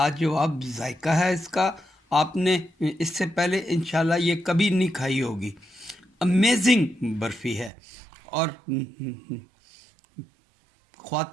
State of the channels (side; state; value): left; drops out; at 7.7 s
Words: जायका है इसका। आपने इससे पहले इंशाल्लाह ये कभी नहीं खाई होगी। अमेजिंग बर्फ़ी है और